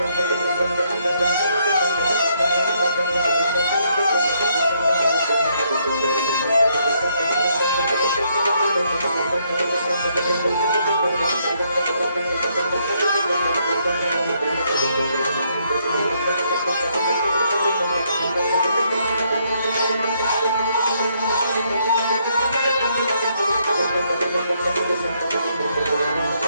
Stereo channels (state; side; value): inverted; both; correlation -0.72